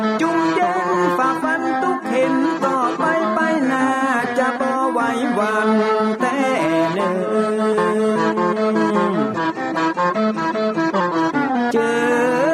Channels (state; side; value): identical; both; correlation 1.00